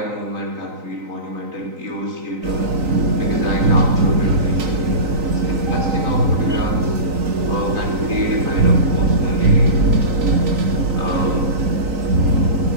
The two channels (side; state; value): left; late; 3.9 ms